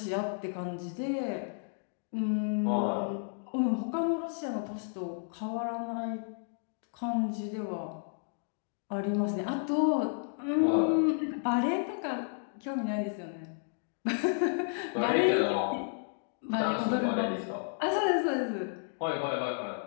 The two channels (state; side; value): silent; right; digital silence